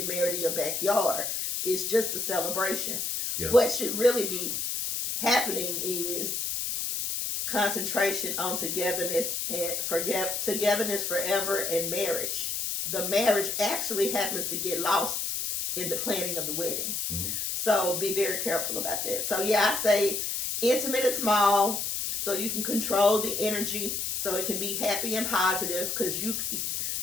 married in your backyard. It's just a celebration. Yeah. What should really be happening is concentration on togetherness forever and marriage. The marriage actually happens to get lost in the planning of the wedding. Mm-hmm. So be very careful about that. So I say intimate and small, so you can control the energy, so it can be happy and positive, because you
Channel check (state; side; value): noise; left; hiss, 1 dB below the sound